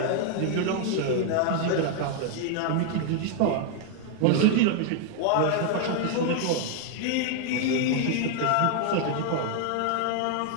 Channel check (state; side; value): different; both; correlation 0.00